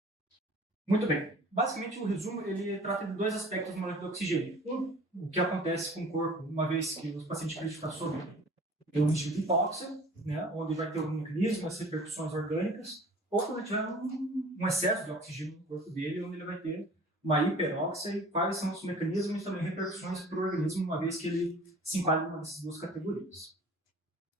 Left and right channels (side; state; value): both; normal; correlation 0.47